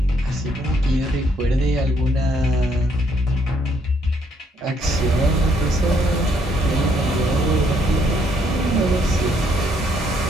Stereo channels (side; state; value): both; normal; correlation 0.70